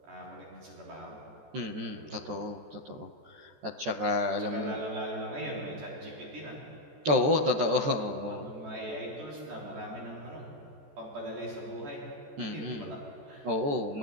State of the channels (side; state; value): left; late; 14 ms